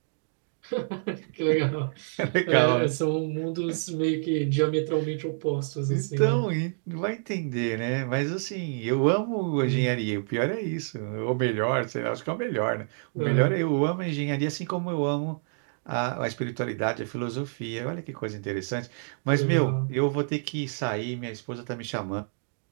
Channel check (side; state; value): left; silent; digital silence